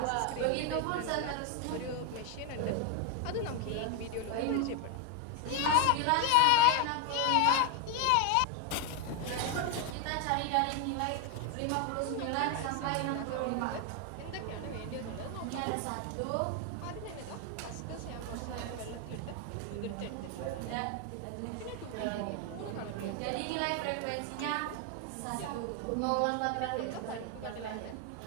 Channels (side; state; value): both; different; correlation 0.01